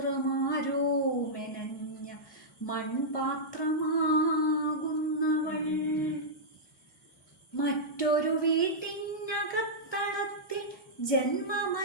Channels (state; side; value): normal; both; correlation -0.10